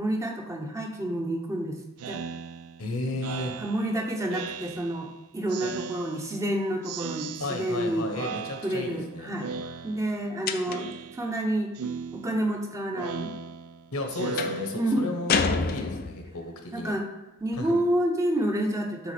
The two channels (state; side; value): normal; both; correlation 0.61